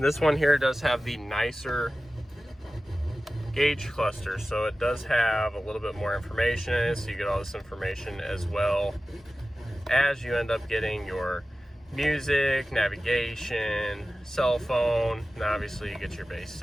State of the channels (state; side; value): normal; both; correlation 0.95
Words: one here does have the nicer gauge cluster, so it does have a little bit more information in it, so you get all this information as well as you end up getting your music, navigation, cell phone, and obviously you get your base